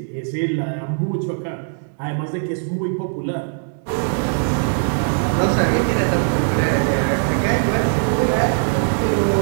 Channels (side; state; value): left; silent; digital silence